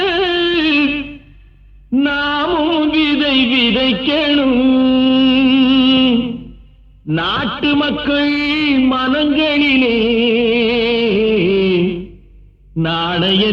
நாமும் விதை விதைக்கணும். நாட்டு மக்கள் மனங்களிலே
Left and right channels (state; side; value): identical; both; correlation 1.00